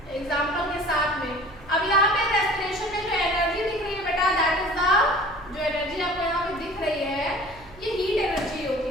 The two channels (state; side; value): noise; right; hum, 22 dB below the sound